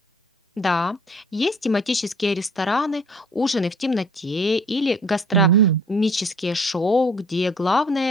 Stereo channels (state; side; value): normal; both; correlation 0.53